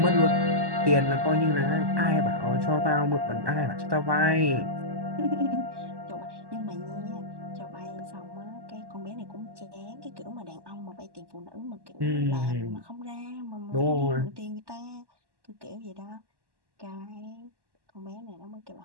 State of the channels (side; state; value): left; late; 1.1 ms